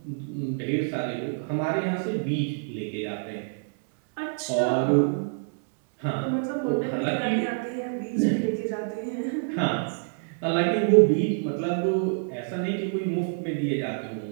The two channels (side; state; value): left; silent; 60 dB below the other